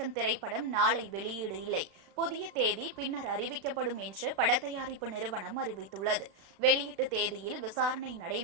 திரைப்படம் நாளை வெளியீடு இல்லை, புதிய தேதி பின்னர் அறிவிக்கப்படும் என்று படத்தயாரிப்பு நிறுவனம் அறிவித்துள்ளது. வெளியீட்டு தேதியில் விசாரணை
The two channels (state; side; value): late; left; 35 ms